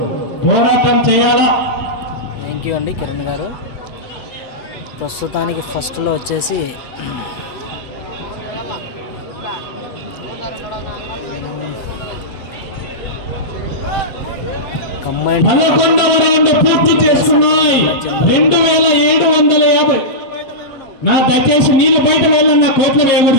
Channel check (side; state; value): right; late; 7.4 ms